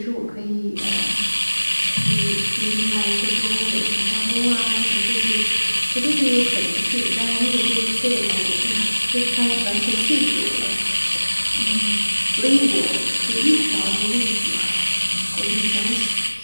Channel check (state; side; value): inverted; both; correlation -1.00